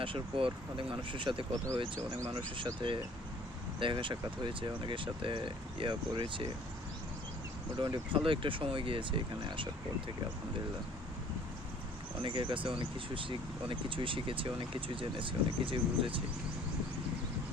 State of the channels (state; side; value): normal; both; correlation 0.55